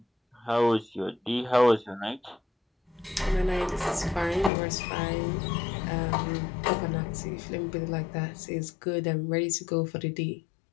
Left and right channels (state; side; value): drops out; right; at 4.5 s